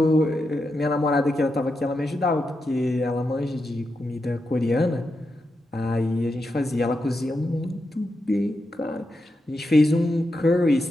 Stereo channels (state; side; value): normal; both; correlation 0.87